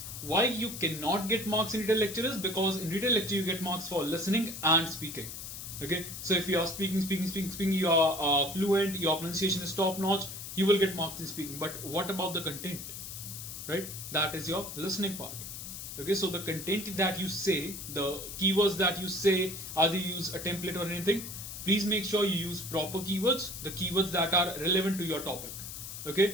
why you cannot get marks in Retell lecture is because in Retell lecture you get marks for listening and speaking. Okay, so if you are speaking, you are fluent, your pronunciation is top notch, you will get marks in speaking. But what about the content? Right, that is your listening part. Okay, so the content that you say, the keywords that you say, either you use a template or anything, please make sure you use proper keywords, the keywords that are relevant to your topic.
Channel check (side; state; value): left; noise; hiss, 9 dB below the sound